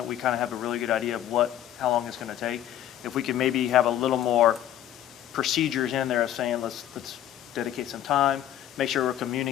We kind of have a really good idea of how long it's going to take. If we could maybe have a little more procedures in there of saying, let's dedicate some time, make sure we're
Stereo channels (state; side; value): quieter; right; 11.7 dB